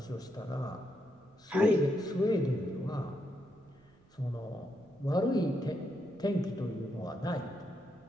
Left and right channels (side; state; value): right; noise; rumble, 29 dB below the sound